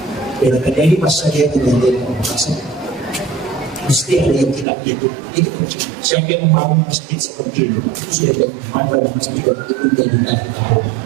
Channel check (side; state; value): left; drops out; at 4.7 s